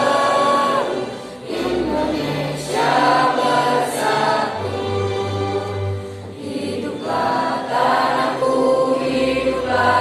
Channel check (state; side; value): identical; both; correlation 1.00